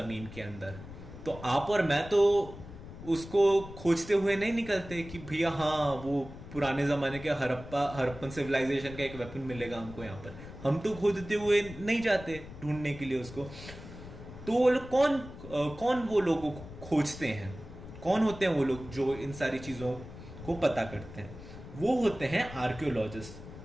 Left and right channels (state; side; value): noise; left; rumble, 14 dB below the sound